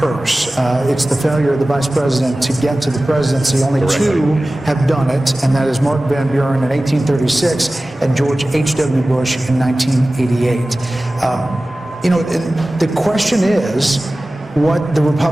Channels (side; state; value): both; normal; correlation 0.97